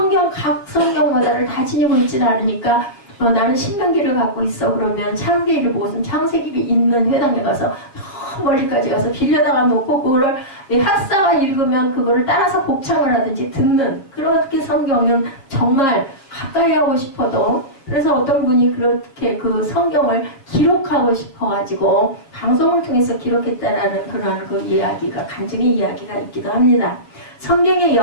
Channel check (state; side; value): late; right; 7.4 ms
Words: 각 성경마다를 다 지니고 있지는 않으니까 나는 신명기를 갖고 있어. 그러면 창세기를 보고서 창세기가 있는 회당에 가서 멀리까지 가서 빌려다가 놓고 그거를 학사가 읽으면 그거를 따라서 복창을 하든지 듣는, 그렇게 성경은 정말 가까이 하고 싶어도, 그래서 어떤 분이 그렇게 그 성경을 기록하고 싶어가지고 방송을 통해서 기록했다라는 그러한 그 이야기가, 간증의 이야기가 있기도 합니다. 성경의